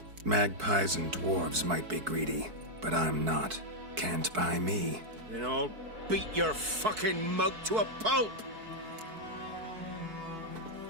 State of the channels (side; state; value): left; late; 4.6 ms